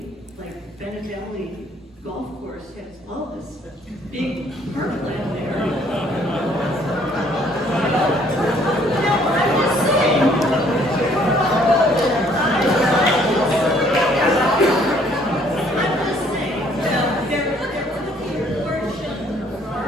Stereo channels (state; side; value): normal; both; correlation 0.62